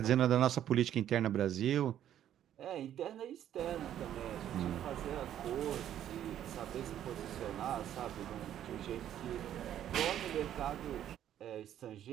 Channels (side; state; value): left; quieter; 10.9 dB